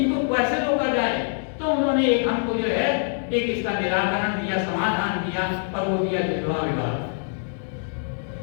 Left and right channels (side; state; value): right; silent; 62 dB below the other